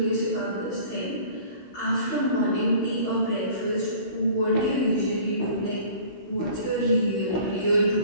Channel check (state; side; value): late; right; 16 ms